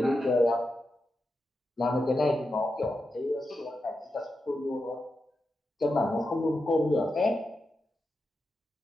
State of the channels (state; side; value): normal; both; correlation 0.88